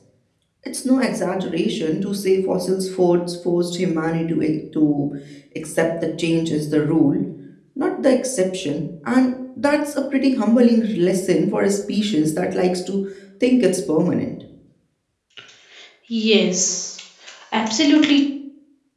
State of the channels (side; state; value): both; identical; correlation 1.00